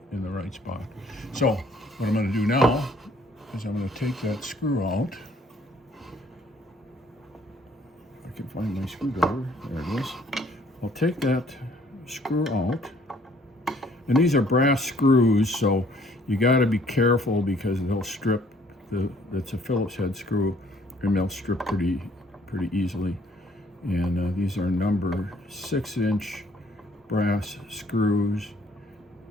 right spot. So what I'm going to do now is I'm going to take that screw out. If I can find my screwdriver. There it is. I'll take that screw out. And these are brass screws, so you got to be careful because they'll strip. That's a Phillips head screw, and they'll strip pretty easily. And these are number 6-inch brass screws,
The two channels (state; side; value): normal; both; correlation 0.61